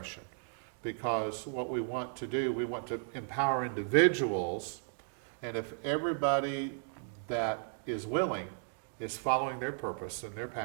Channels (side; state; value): left; silent; digital silence